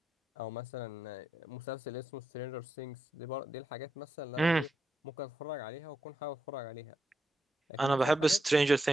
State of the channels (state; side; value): normal; both; correlation 0.84